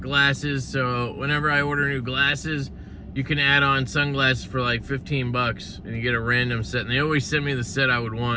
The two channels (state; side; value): identical; both; correlation 1.00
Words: so whenever I order new glasses, you can add on sunglasses for like 15 bucks, and you get a random set, and they always send me the set I would